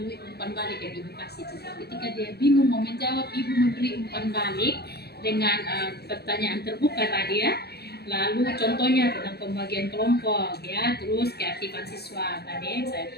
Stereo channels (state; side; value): late; right; 0.47 ms